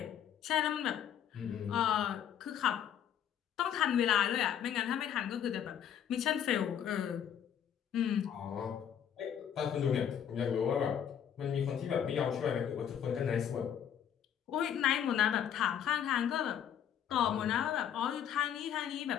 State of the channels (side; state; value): right; quieter; 9.2 dB